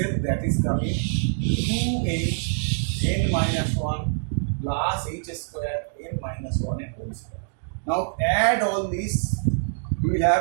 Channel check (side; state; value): left; silent; digital silence